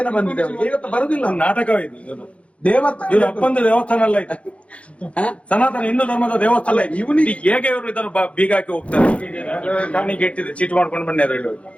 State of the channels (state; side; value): late; right; 0.062 ms